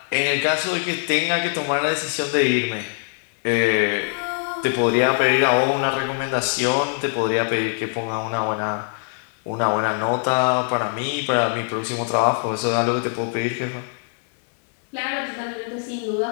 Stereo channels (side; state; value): right; silent; 64 dB below the other